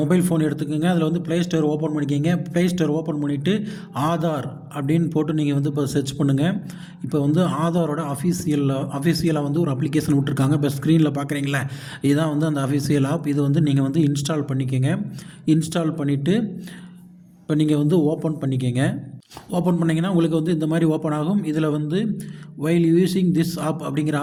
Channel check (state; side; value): identical; both; correlation 1.00